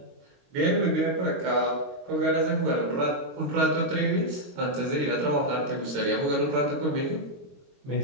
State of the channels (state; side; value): late; left; 22 ms